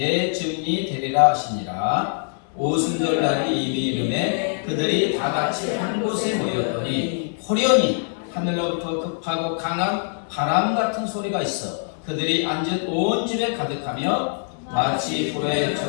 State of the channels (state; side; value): silent; right; 63 dB below the other